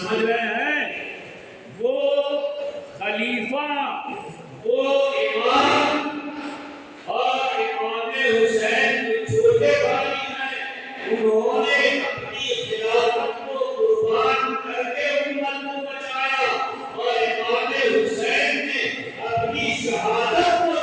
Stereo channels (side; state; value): both; identical; correlation 1.00